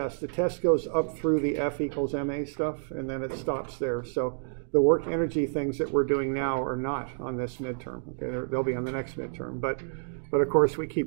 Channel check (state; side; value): silent; left; digital silence